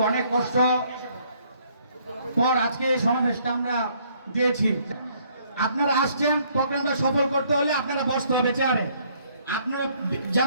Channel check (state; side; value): inverted; both; correlation -0.65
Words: কষ্ট পর আজকে এই সমাবেশটা আমরা দিয়েছি। আপনারা আসছেন, প্রোগ্রামটা সফল করতে হলে আপনারা বসতে হবে চেয়ারে। আপনারা